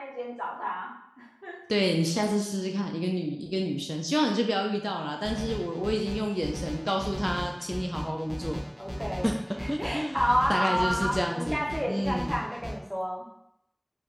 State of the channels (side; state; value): both; identical; correlation 1.00